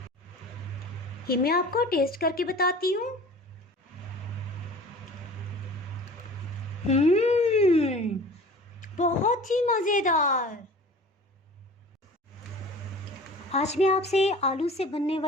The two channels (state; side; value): normal; both; correlation 0.42